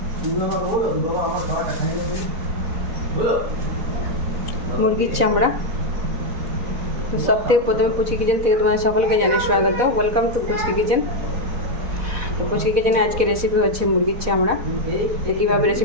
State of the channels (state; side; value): late; left; 4.1 ms